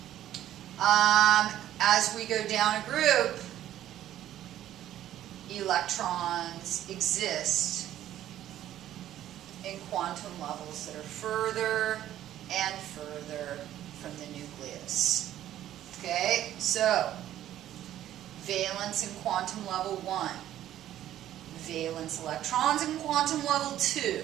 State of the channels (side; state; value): left; quieter; 12.4 dB